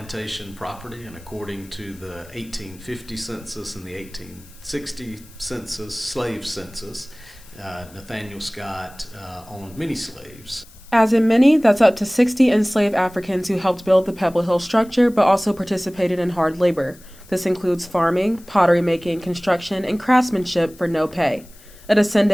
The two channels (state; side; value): noise; left; hiss, 24 dB below the sound